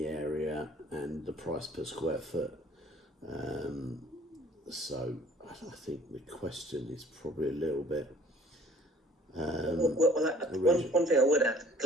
area and the price per square foot. So I think the question is probably a little bit. One thing I would add,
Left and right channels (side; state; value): both; normal; correlation 0.54